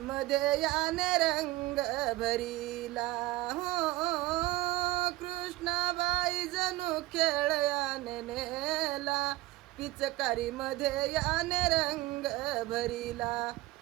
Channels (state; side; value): quieter; left; 18.5 dB